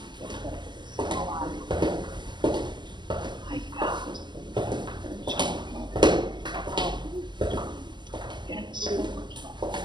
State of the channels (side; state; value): left; late; 0.21 ms